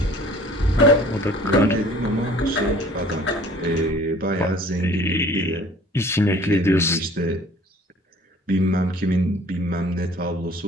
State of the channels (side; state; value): both; normal; correlation 0.51